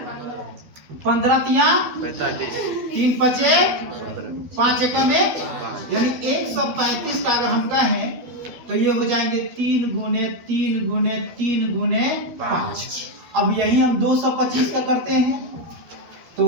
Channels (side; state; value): left; late; 12 ms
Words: 15 तिया 3 पचे 5 एकम 1, यानी 135 का अगर हम कहें तो ये हो जाएंगे 3 गुने 3 गुने 3 गुने 5। अब यही हम 225 का करते हैं तो